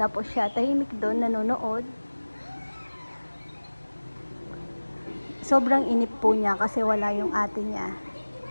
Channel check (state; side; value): inverted; both; correlation -1.00